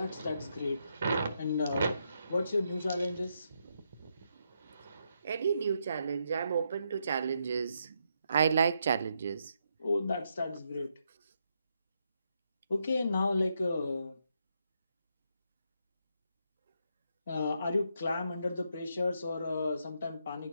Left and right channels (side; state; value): both; inverted; correlation -0.79